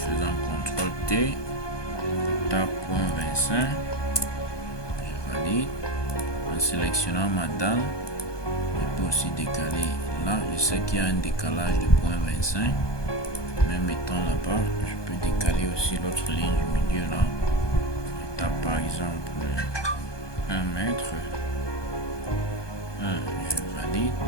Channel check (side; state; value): right; late; 1.2 ms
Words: CTRL T, tape point 25, je valide. En sélectionnant ma dalle, je peux aussi décaler là. Je sais qu'il y a un décalage de point 25, même étant là-bas, je peux décaler aussi l'autre ligne du milieu là. Je tape par exemple 1 mètre, 1, je valide.